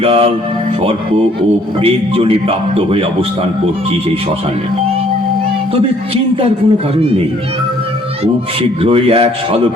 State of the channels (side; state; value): both; normal; correlation 0.62